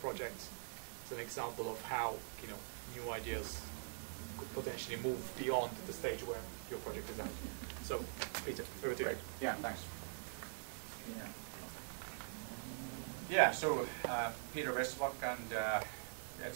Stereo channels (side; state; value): left; silent; digital silence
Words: It's an example of how new ideas could potentially move beyond the stage where your project is at. So, Peter, over to you. Yeah, thanks. Yeah, so Peter Vesterbacka, and